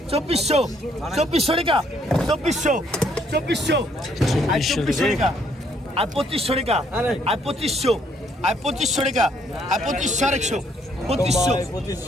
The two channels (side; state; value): both; normal; correlation 0.68